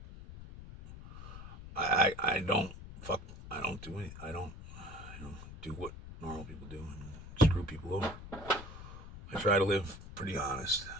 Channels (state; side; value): noise; left; rumble, 13 dB below the sound